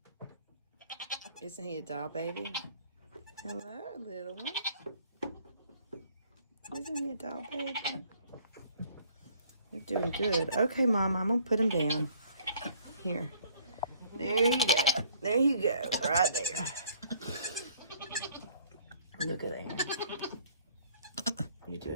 Isn't he a doll baby? Hello, little one. Isn't he a doll baby? You're doing good. Okay, Mama, I'm going to put him down. Here. There you go. There you go. Right there. Look at that. You're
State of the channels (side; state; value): both; inverted; correlation -0.59